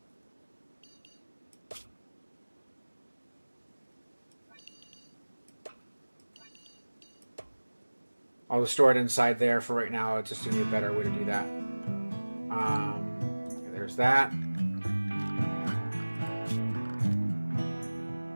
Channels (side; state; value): both; inverted; correlation -1.00